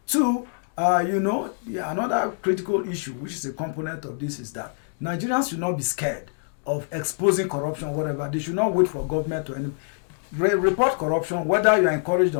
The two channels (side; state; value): right; silent; digital silence